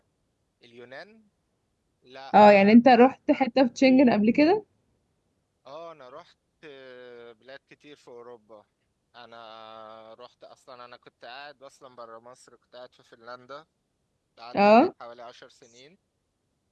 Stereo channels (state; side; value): identical; both; correlation 1.00